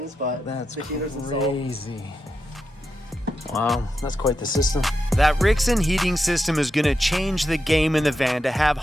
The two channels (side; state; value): both; normal; correlation 0.87